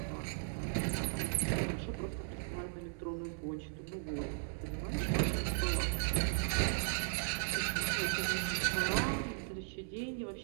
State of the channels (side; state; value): left; silent; digital silence